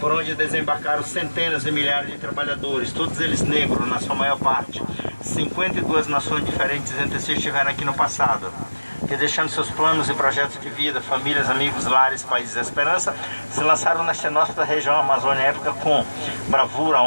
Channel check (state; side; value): inverted; both; correlation -1.00